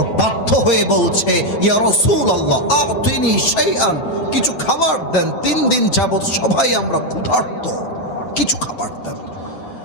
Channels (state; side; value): late; right; 8.2 ms